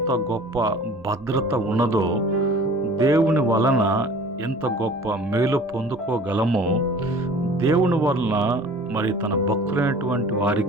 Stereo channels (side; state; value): both; normal; correlation 0.46